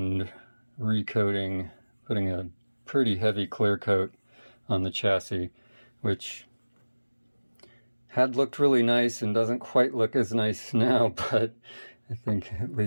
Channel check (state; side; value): inverted; both; correlation -1.00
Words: recoating, putting a pretty heavy clear coat on the chassis, which had looked really nice and doesn't quite look as nice now, but I think at